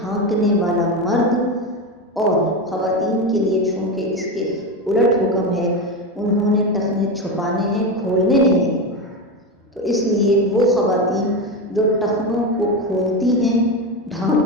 والا مرد، اور خواتین کے لیے چونکہ اس کے الٹ حکم ہے، انہوں نے ٹخنے چھپانے ہیں، کھولنے نہیں ہیں، تو اس لیے وہ خواتین جو ٹخنوں کو کھولتی ہیں،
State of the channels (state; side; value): normal; both; correlation 0.17